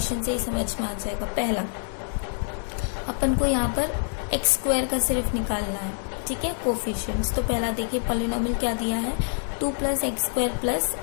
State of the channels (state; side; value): silent; right; digital silence